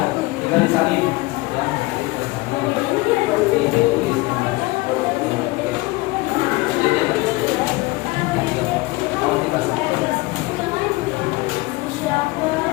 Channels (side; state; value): right; quieter; 22.2 dB